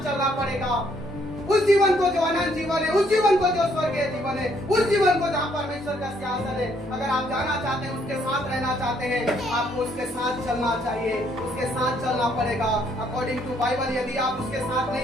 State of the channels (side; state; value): both; normal; correlation 0.68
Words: चलना पड़ेगा। उस जीवन को जो अनंत जीवन है, उस जीवन को जो स्वर्गीय जीवन है, उस जीवन को जहाँ परमेश्वर का सिंहासन है, अगर आप जाना चाहते हैं, उसके साथ रहना चाहते हैं, आपको उसके साथ चलना चाहिए, उसके साथ चलना पड़ेगा। अकॉर्डिंग टू बाइबल, यदि आप उसके साथ